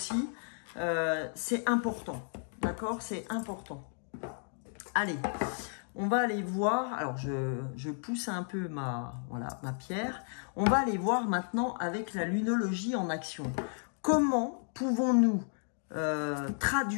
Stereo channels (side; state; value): right; silent; 56 dB below the other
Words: C'est important, d'accord? C'est important. Allez, on va aller voir. Alors, je pousse un peu ma pierre. On va aller voir maintenant avec la lunologie en action. Comment pouvons-nous